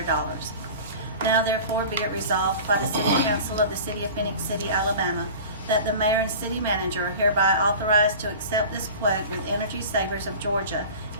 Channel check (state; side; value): inverted; both; correlation -0.37